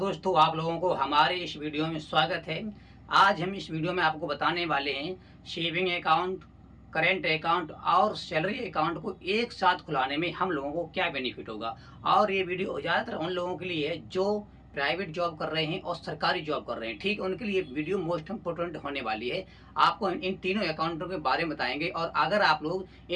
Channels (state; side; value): identical; both; correlation 1.00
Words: आप लोगों को हमारे इस वीडियो में स्वागत है। आज हम इस वीडियो में आपको बताने वाले हैं सेविंग अकाउंट, करेंट अकाउंट और सैलरी अकाउंट को एक साथ खुलाने में हम लोगों को क्या बेनिफिट होगा। और ये वीडियो ज़्यादातर उन लोगों के लिए है जो प्राइवेट जॉब कर रहे हैं और सरकारी जॉब कर रहे हैं। ठीक, उनके लिए वीडियो मोस्ट इम्पोर्टेंट होने वाली है। आपको इन तीनों अकाउंटों के बारे में बताएंगे और अगर आप लोग